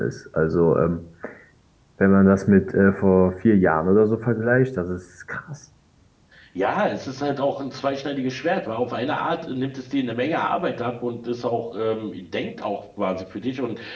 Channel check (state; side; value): identical; both; correlation 1.00